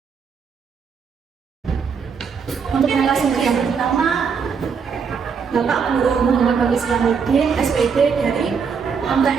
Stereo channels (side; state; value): left; quieter; 6.1 dB